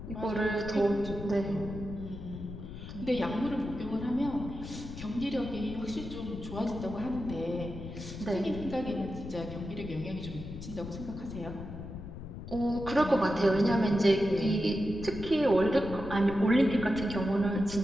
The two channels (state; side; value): noise; left; rumble, 10 dB below the sound